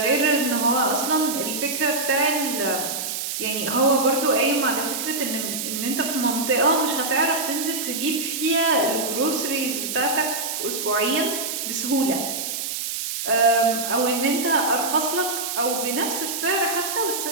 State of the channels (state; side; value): noise; right; hiss, 4 dB below the sound